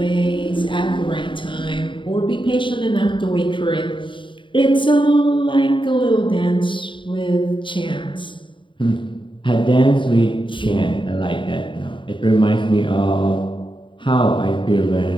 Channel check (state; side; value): late; right; 0.24 ms